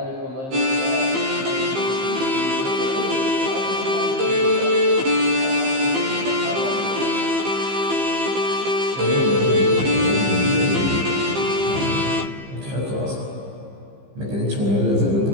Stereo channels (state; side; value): late; left; 15 ms